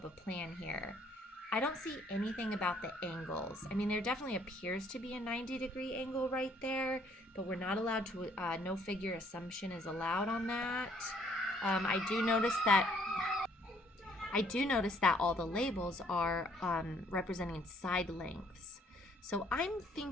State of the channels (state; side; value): normal; both; correlation 0.64